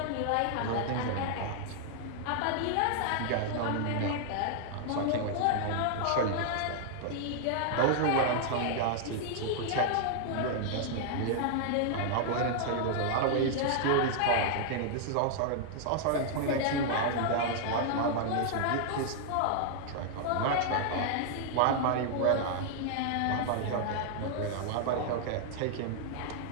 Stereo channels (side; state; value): both; different; correlation -0.01